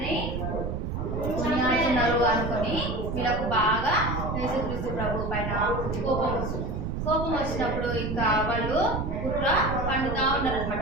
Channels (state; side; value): noise; right; rumble, 3 dB below the sound